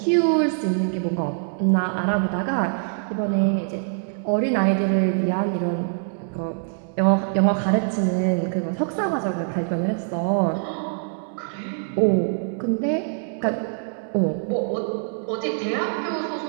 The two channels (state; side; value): silent; left; 63 dB below the other